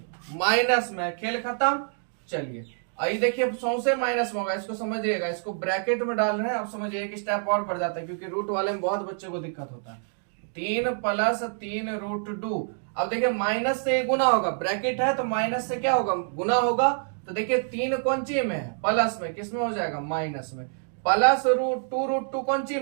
माइनस में, खेल खत्म। चलिए आई देखिए सौसे माइनस में होगा, इसको समझिएगा, इसको ब्रैकेट में डाल रहे हैं, अब समझिए एक स्टेप और बढ़ जाता है, क्योंकि रूट वाले में बहुत बच्चों को दिक्कत होता है। 3 + 3√2, अब देखिए माइनस से गुना होगा, ब्रैकेट है तो माइनस से क्या होगा गुना होगा, तो देखिए 3 कौन सी में है, प्लस में, किसमें हो जाएगा माइनस में, प्लस √2 कौन सी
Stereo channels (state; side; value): silent; left; 60 dB below the other